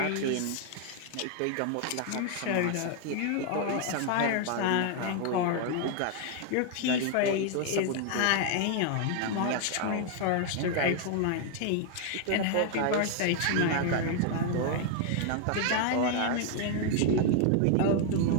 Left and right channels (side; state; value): both; different; correlation 0.00